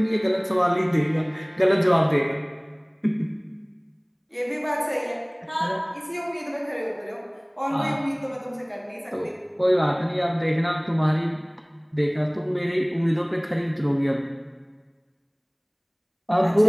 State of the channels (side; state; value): both; identical; correlation 1.00